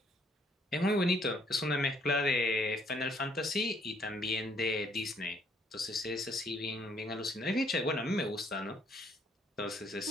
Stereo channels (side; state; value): both; normal; correlation 0.66